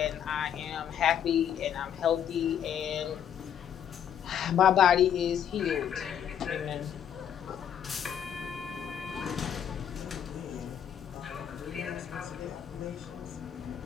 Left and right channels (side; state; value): right; quieter; 9.1 dB